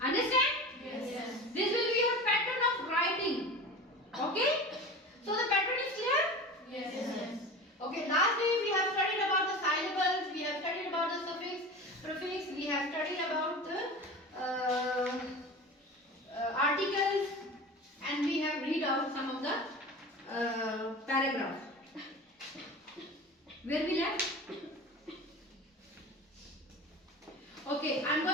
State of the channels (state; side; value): normal; both; correlation 0.33